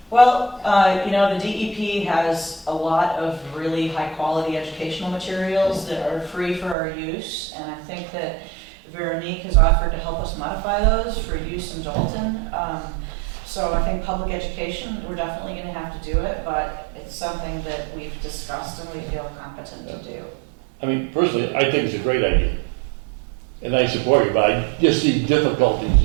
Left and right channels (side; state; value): left; drops out; at 6.8 s